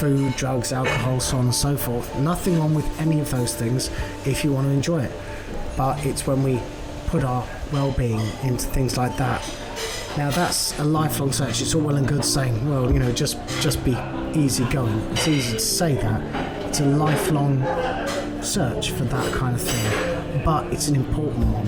drugs, alcohol, so on and so forth. Nothing wrong with any of those things if you want to enjoy it. But it's when we put our well-being into things like that. Now, that's a lifelong search. It's all well and good saying, well, just be easy going. It's easy to say that. It's a lifelong search for that kind of thing. But it's an important one,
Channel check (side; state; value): both; identical; correlation 1.00